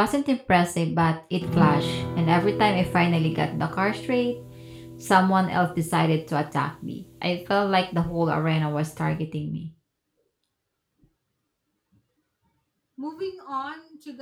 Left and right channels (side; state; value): both; identical; correlation 1.00